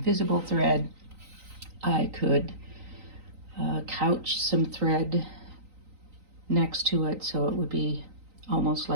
thread. I could couch some thread next to it so it would be almost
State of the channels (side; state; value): left; late; 3.9 ms